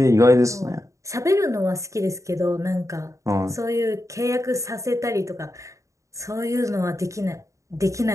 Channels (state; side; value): late; left; 0.15 ms